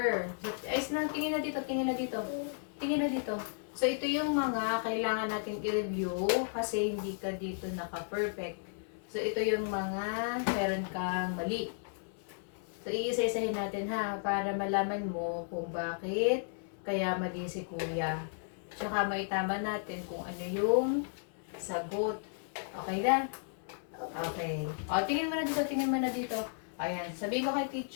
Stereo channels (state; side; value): silent; right; 55 dB below the other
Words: Ayos na, tingin na dito, tingin na dito. Tingin na dito. So, ito yung mga kailangan natin i-review kasi hindi ka dito naka-perfect. So, ito yung mga meron kang mali. So, iisa-isahin natin ha, para malaman mo kung bakit kaya mali si kuya. Tsaka maitama natin kung ano yung sagot. Okay na? Okay. O, tingin mo na dito, tingin mo na dito. Ayan, sabihin mo kay